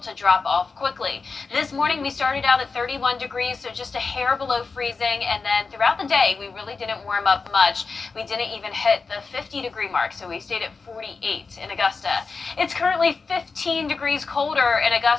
to drop off quickly. This morning we started out at 31 degrees, so just a hair below freezing, and then throughout the day we really didn't warm up much. We didn't even hit the 50-degree mark, so we stayed at 48 in Augusta. It's currently 15 degrees colder in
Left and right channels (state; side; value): quieter; right; 4.5 dB